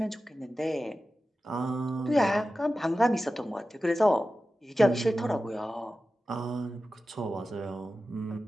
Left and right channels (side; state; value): both; normal; correlation 0.94